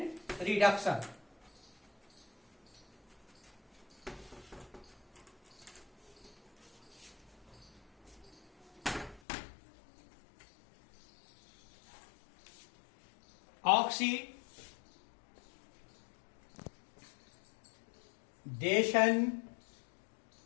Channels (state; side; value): drops out; right; at 9.2 s